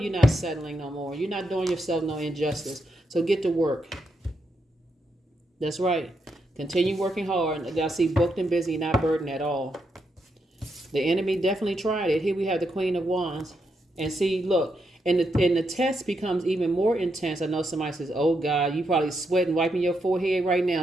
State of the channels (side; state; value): both; normal; correlation 0.82